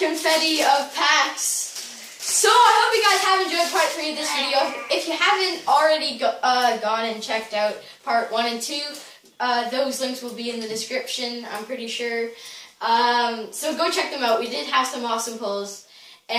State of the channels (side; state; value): both; identical; correlation 1.00